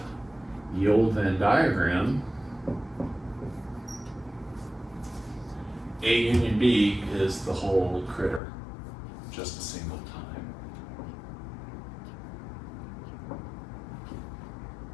the old Venn diagram, A union B is the whole critter, just a single time.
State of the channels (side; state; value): right; drops out; at 8.4 s